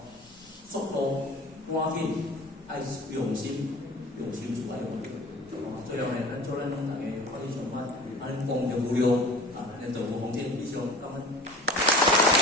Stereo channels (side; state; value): both; normal; correlation 0.41